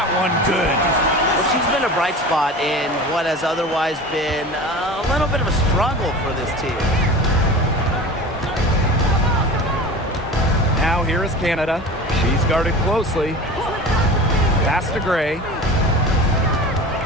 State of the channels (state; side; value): normal; both; correlation 0.35